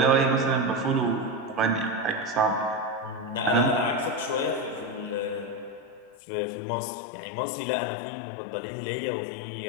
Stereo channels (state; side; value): drops out; right; at 6.2 s